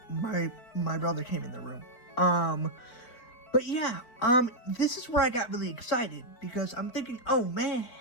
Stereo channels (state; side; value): late; right; 4.4 ms